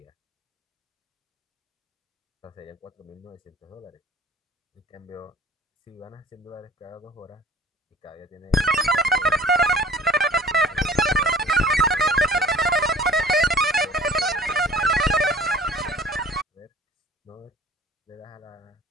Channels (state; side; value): normal; both; correlation 0.48